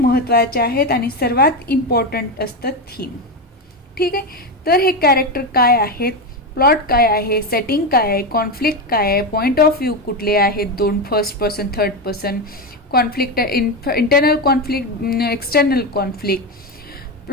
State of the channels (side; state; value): both; normal; correlation 0.13